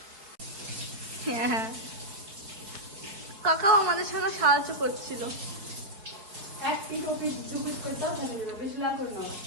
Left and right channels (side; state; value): left; late; 4.9 ms